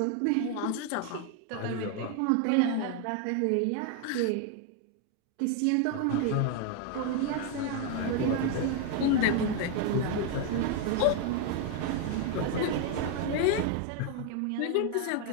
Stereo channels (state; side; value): different; both; correlation 0.01